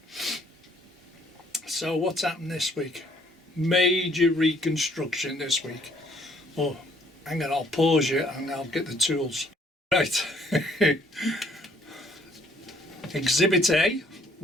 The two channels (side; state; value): both; normal; correlation 0.63